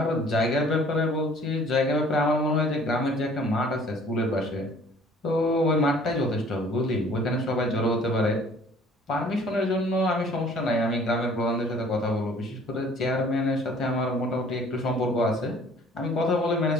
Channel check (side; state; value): both; normal; correlation 0.54